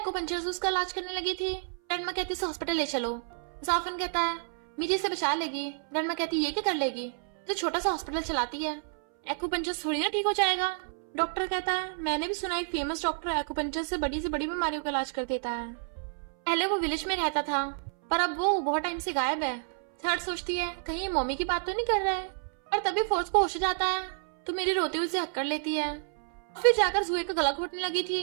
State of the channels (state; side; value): silent; left; 58 dB below the other